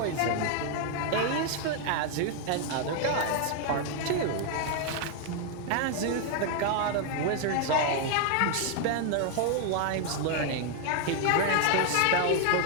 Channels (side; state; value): both; different; correlation 0.00